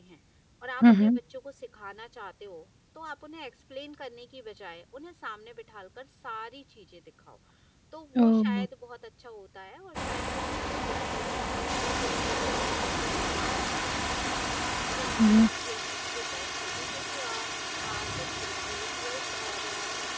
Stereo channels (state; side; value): identical; both; correlation 1.00